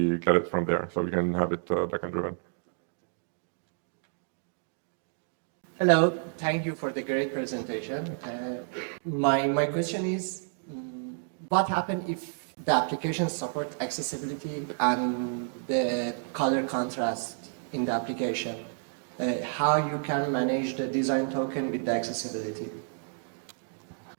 get it from there. So we can have it backend driven. Hello, thank you for the great presentation. My question is, what happens if the application supports accessibility and the color contrast in the application? How you can manage the design token with the accessibility?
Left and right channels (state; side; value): silent; left; digital silence